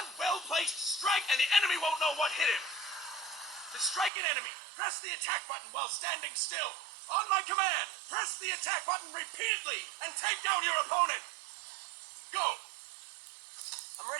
well-placed strike and the enemy won't know what hit him. To strike an enemy, press the attack button while standing still. On my command, press the attack button repeatedly and take down your opponent. Go! I'm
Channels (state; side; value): drops out; left; at 4.1 s